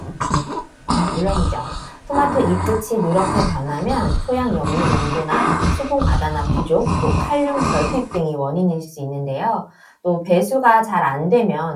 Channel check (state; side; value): identical; both; correlation 1.00